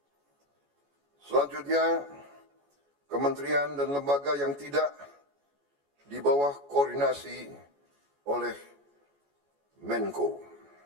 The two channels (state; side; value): late; left; 14 ms